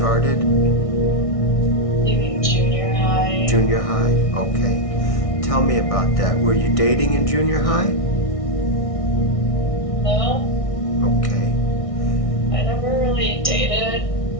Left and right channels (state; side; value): late; right; 1.6 ms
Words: maybe junior high. Junior high? Okay. Tell me about that. Were you dating in junior high? No, Okay. I never really dated,